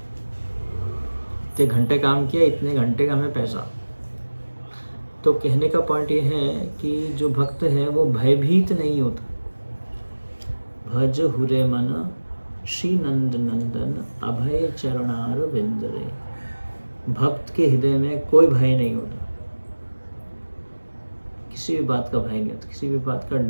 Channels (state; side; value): inverted; both; correlation -1.00